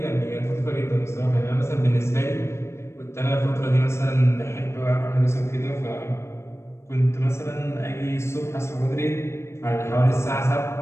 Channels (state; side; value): late; right; 0.13 ms